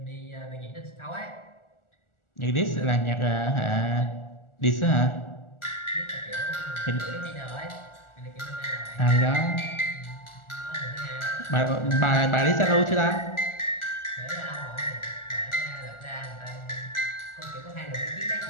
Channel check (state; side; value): late; right; 1.4 ms